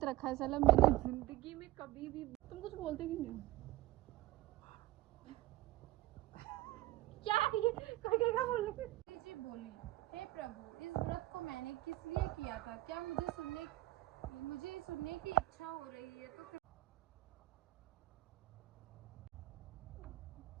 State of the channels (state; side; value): quieter; left; 16.9 dB